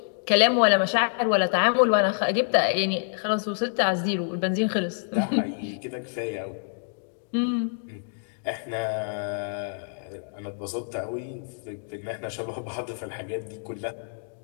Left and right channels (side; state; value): right; silent; digital silence